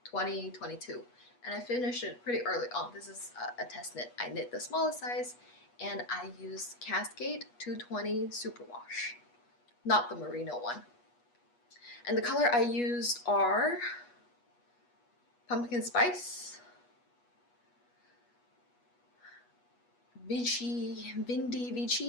2022 and I finished it pretty early on. This is a test knit. I knit the smallest size and I used Cascade 220 Superwash, not the merino one. And the color I used are Pumpkin Spice, Vinci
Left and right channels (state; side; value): late; right; 8.3 ms